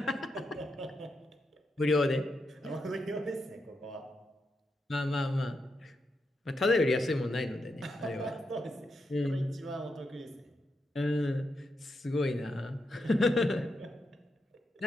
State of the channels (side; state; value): both; normal; correlation 0.84